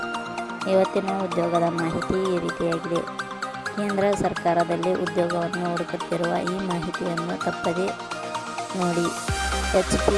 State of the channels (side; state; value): both; identical; correlation 1.00